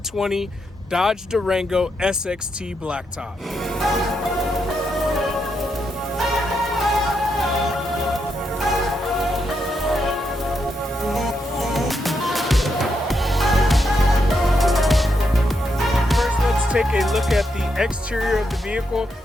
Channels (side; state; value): both; normal; correlation 0.81